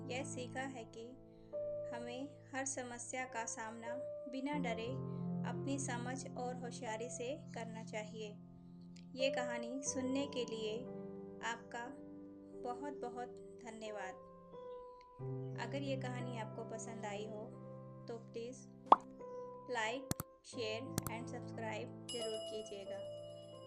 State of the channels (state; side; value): identical; both; correlation 1.00